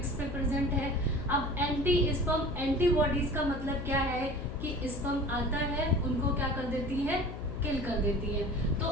पे प्रेजेंट है। अब एंटी स्पर्म एंटीबॉडीज का मतलब क्या है कि स्पर्म आता है उनको क्या कर देती है, किल कर देती है। तो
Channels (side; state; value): left; noise; hum, 9 dB below the sound